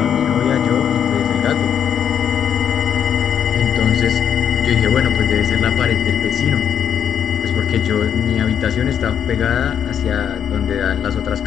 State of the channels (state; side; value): quieter; right; 8.6 dB